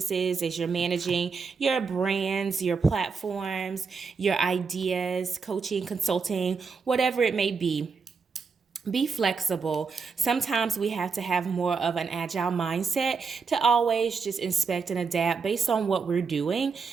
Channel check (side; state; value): left; quieter; 5.1 dB